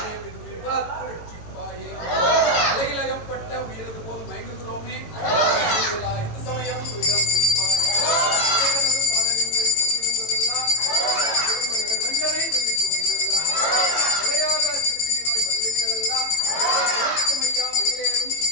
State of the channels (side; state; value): right; late; 18 ms